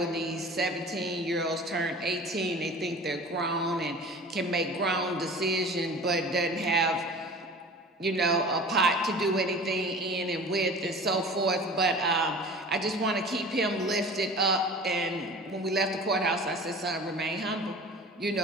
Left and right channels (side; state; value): both; normal; correlation 0.40